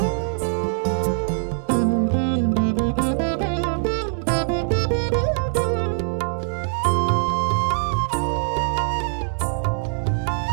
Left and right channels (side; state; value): left; silent; digital silence